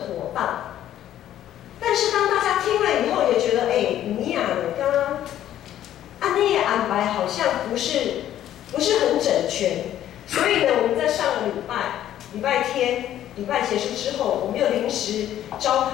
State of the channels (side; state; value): right; quieter; 11.8 dB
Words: 当。但是当大家听了以后，也觉得你呀，刚刚按那个安排好像不是很整全，所以呢，我们在上个礼拜天结束之后，我们又临时召